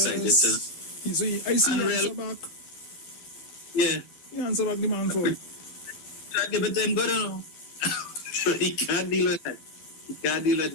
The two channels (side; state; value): right; late; 12 ms